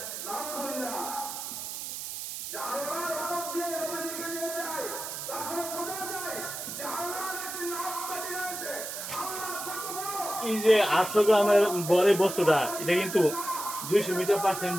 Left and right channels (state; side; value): noise; right; hiss, 7 dB below the sound